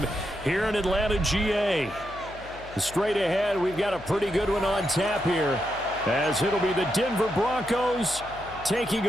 here in Atlanta, GA. Straight ahead, we've got a pretty good one on tap here, as it'll be the Denver Broncos taking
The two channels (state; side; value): noise; left; hum, 17 dB below the sound